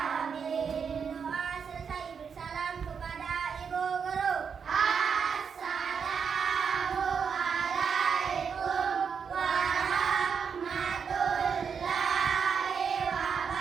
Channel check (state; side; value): quieter; left; 6.5 dB